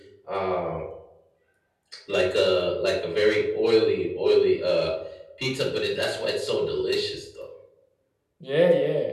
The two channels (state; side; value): identical; both; correlation 1.00